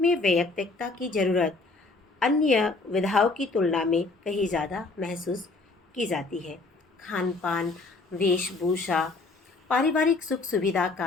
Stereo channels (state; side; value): quieter; right; 3.5 dB